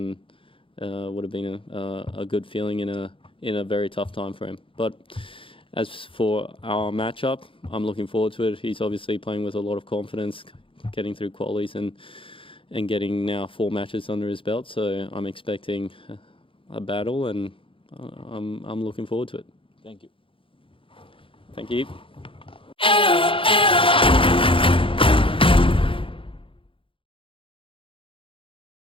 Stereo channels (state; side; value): late; right; 0.25 ms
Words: would have been a good feeling in a very tough time for him. But as for our matchup, I'm looking forward to it. He's obviously playing with a lot of confidence, getting through qualies and getting now 4 matches under his belt. So I'm expecting a battle, and I'm looking forward to it. Thank you. Thank you.